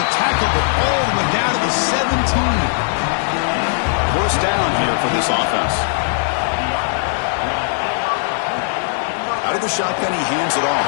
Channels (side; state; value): right; silent; digital silence